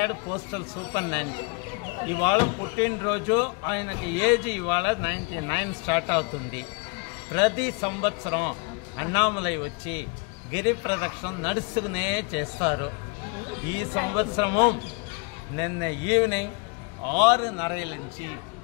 పోస్టల్ సూపరింటెండెంట్. ఇవాళ పుట్టినరోజు, ఆయనకి ఏజ్ ఇవాళ 99 స్టార్ట్ అవుతుంది. ప్రతి సంవత్సరం అన్నామలై వచ్చి గిరి ప్రదక్షిణ నడుస్తూనే చేస్తారు. ఈ సంవత్సరము నిన్న ఈవినింగ్ 6:30 నుంచి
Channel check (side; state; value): right; quieter; 30.7 dB